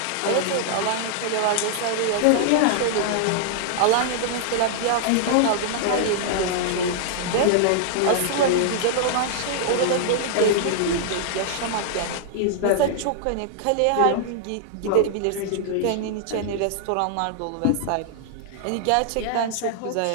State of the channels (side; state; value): both; different; correlation -0.01